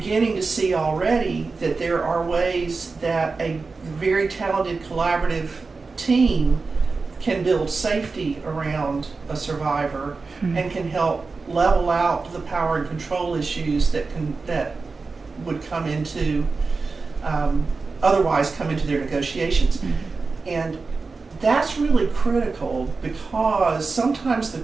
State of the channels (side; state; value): left; quieter; 4.2 dB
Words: to see already that there are ways that a very talented collaborative team can build safety around a survivor and can help level out the power and control issues that would come into otherwise come into their negotiations. And that's really critical because sometimes the